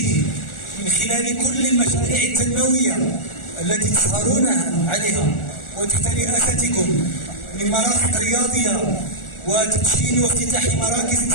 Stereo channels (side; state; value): right; late; 1.4 ms